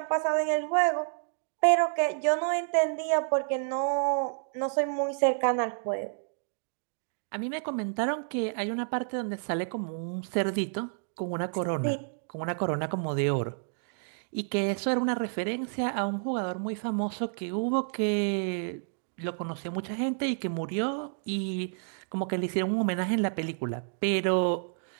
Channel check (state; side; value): silent; left; digital silence